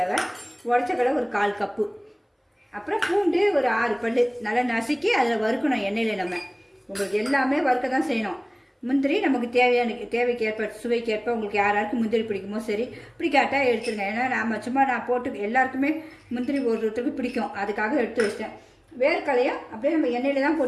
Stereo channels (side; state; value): both; identical; correlation 1.00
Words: உடச்சக்கடலை ஒரு 1/4 கப்பு, அப்புறம் பூண்டு ஒரு 6 பல் நல்லா நசுக்கி அதில் வறுக்கணும் எண்ணெயில். நம்ம உங்களுக்கு எல்லாமே வறுக்க தான் செய்யணும். முந்திரி நமக்கு தேவைக்கு ஏற்ப சுவைக்கு ஏற்ப உங்களுக்கு யாராருக்கு முந்திரி பிடிக்குமோ சரி, பிடிக்காட்டால் எடுத்துருங்க. ஏன்னா நான் போட்டு எல்லாருக்குமே முந்திரி ஒருத்தருக்கு பிடிக்கும், அதுக்காக எடுத்து வச்சிட்டேன். வேர்க்கலையும் அப்படியே நம்ம எண்ணெயில் தான்